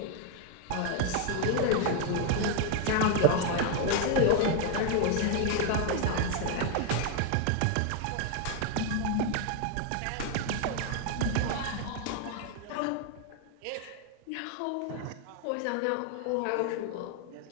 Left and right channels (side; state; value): both; different; correlation 0.01